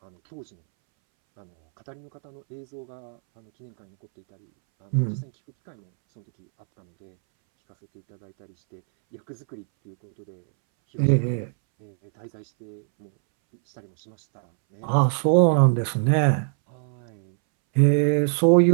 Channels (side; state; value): left; silent; 63 dB below the other